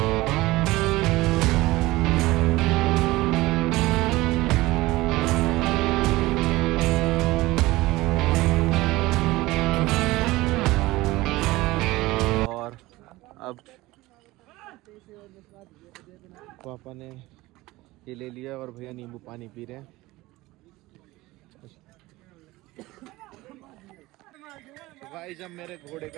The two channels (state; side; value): quieter; left; 19.4 dB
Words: और अब पापा ने ये ले लिया और भैया नींबू पानी पी रहे हैं। तो भाई जब मेरे घोड़े